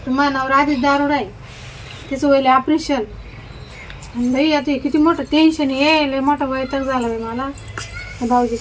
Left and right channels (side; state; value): both; identical; correlation 1.00